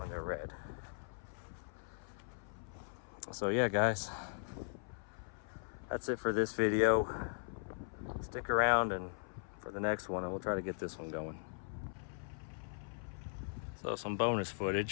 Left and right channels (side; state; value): right; silent; 52 dB below the other